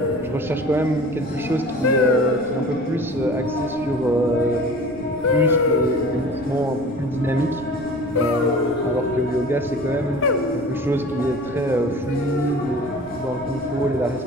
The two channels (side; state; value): right; noise; rumble, 19 dB below the sound